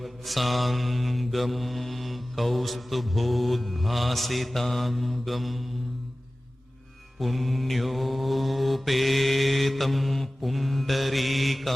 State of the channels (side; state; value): both; normal; correlation 0.97